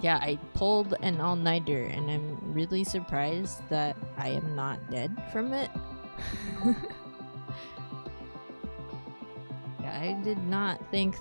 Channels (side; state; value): both; inverted; correlation -1.00